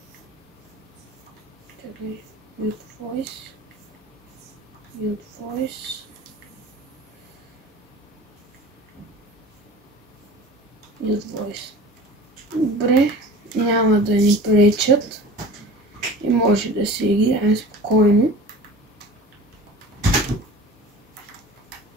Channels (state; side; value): normal; both; correlation 0.39